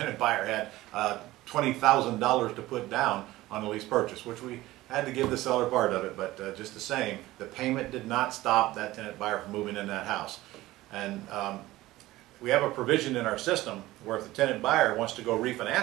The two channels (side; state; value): left; quieter; 17.3 dB